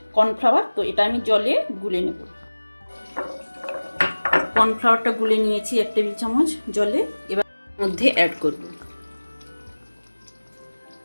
কর্নফ্লাওয়ার, তো এটা আমি জলে গুলে নেব। কর্নফ্লাওয়ারটা গুলে নিয়েছি 1 টেবিল চামচ জলে, এবার মধ্যে অ্যাড করব।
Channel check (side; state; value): both; inverted; correlation -1.00